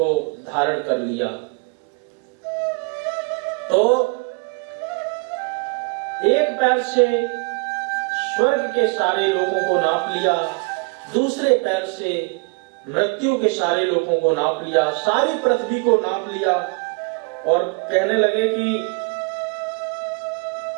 धारण कर लिया। तो एक पैर से स्वर्ग के सारे लोगों को नाप लिया, दूसरे पैर से मृत्यु के सारे लोगों को नाप लिया, सारी पृथ्वी को नाप लिया और कहने लगे कि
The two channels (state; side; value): quieter; left; 32.7 dB